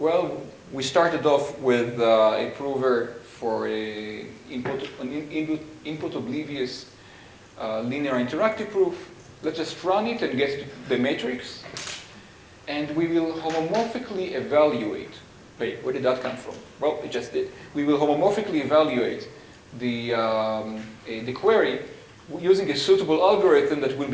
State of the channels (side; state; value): both; identical; correlation 1.00